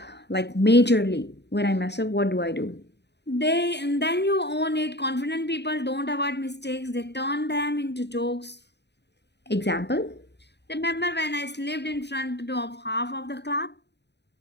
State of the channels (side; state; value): right; late; 0.50 ms